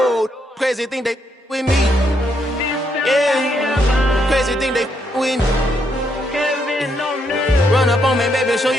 Crazy thing they with me. Yeah, crazy thing they with me. Run up on me, baby, so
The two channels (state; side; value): normal; both; correlation 0.76